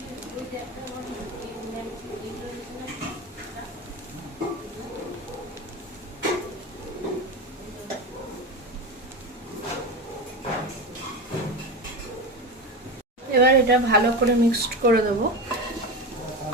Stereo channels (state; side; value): normal; both; correlation 0.22